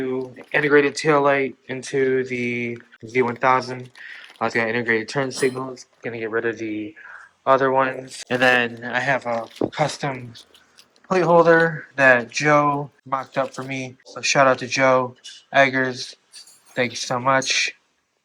integrated tail light into the Z1000. It's got integrated turn signals. Gonna get rid of the other ones, and then I have a custom plate holder that Joe mocked up for me. So shout out to Joe Eggers. Thank you so much.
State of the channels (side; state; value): both; identical; correlation 1.00